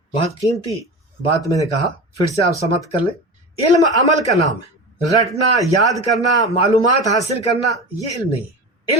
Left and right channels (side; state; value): both; normal; correlation 0.29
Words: بہت قیمتی بات میں نے کہا، پھر سے آپ سمجھ کر لیں۔ علم عمل کا نام ہے، رٹنا، یاد کرنا، معلومات حاصل کرنا، یہ علم نہیں ہے۔